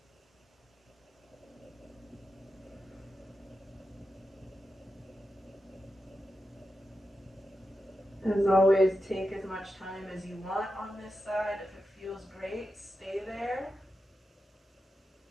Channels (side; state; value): both; normal; correlation 0.89